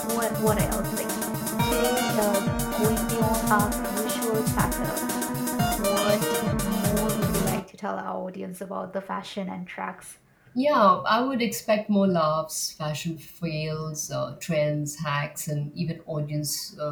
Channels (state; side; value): identical; both; correlation 1.00